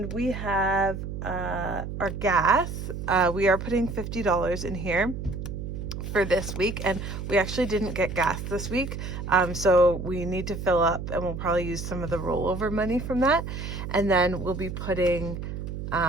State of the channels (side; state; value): right; noise; hum, 6 dB below the sound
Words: we have our gas. We are putting $50 in here for this week, and we actually didn't get gas this week, so we need to fill up, and we'll probably use some of the rollover money from that, and then we'll be putting